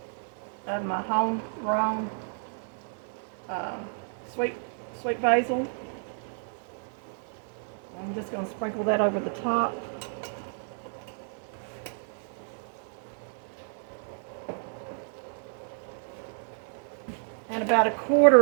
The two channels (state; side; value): silent; left; 57 dB below the other